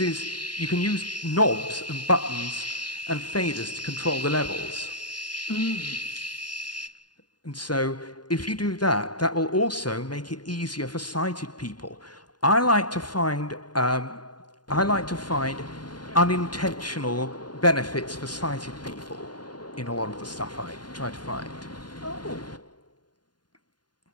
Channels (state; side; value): late; right; 0.70 ms